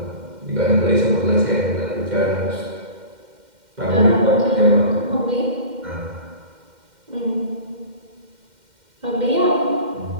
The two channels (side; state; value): left; late; 2.1 ms